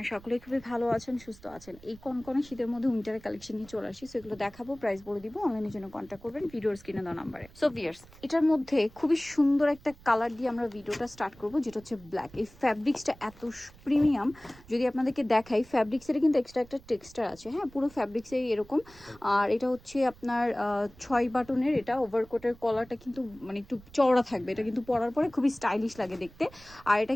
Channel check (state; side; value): noise; right; rumble, 23 dB below the sound